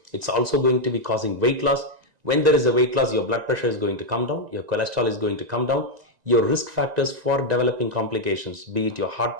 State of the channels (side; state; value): left; late; 1.9 ms